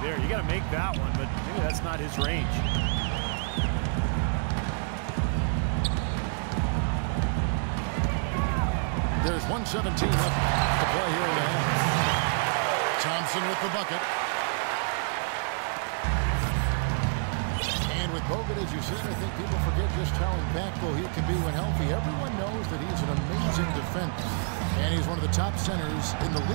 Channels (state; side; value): silent; left; 59 dB below the other